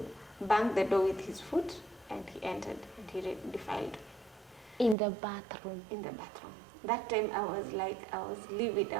banged the door with his foot, and he entered, and he defiled. In the bathroom? In the bathroom. That time I was livid.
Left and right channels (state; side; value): drops out; left; at 5.0 s